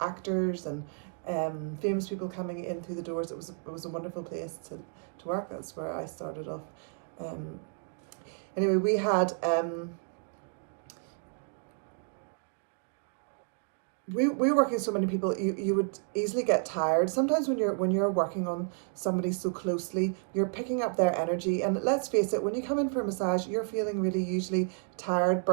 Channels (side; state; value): left; silent; 57 dB below the other